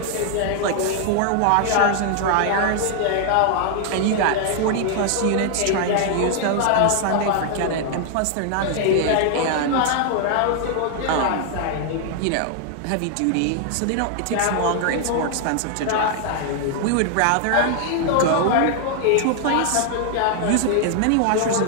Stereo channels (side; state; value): both; different; correlation 0.00